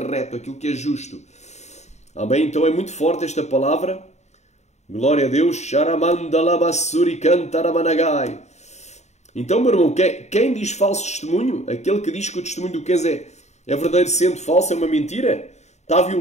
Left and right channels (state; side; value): late; right; 0.33 ms